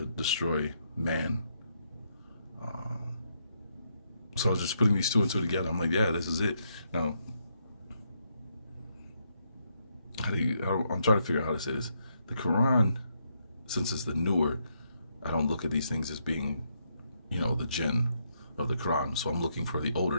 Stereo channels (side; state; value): both; inverted; correlation -0.77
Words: destroy man. So I was just putting these two and two together. I'm like, yeah, this is it. Now, I'm trying to figure out how to say this. The Quran, since it's the newer, I don't look at these things as being, the Jinn of the Quran. So I'm looking for the older